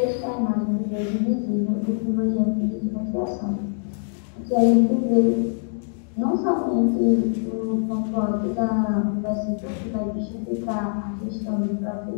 é a imagem do Deus invisível, do primogênito de toda a criação. Que a gente vê não somente o conforto do versículo que vai justificar a questão do próprio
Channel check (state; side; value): silent; right; digital silence